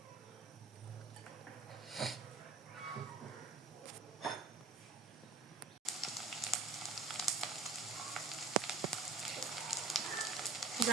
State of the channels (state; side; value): quieter; left; 3.8 dB